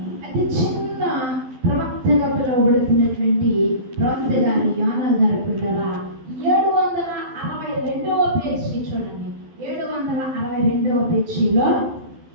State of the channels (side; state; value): left; late; 12 ms